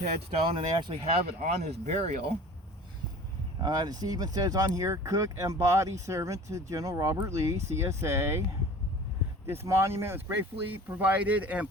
and they actually have it on his burial. It even says on here, cook and body servant to General Robert Lee, CSA. This monument was gratefully provided and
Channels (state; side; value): normal; both; correlation 0.41